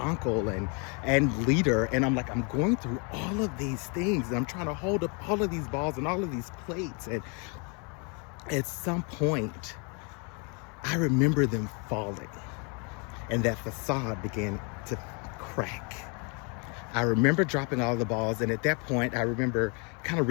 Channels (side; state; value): right; quieter; 34.5 dB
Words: and leader. And I'm going through all of these things. And I'm trying to hold up all of these balls and all of these plates. And at some point, I remember them falling. And that facade began to crack. I remember dropping all the balls. And at that point, I remember kind of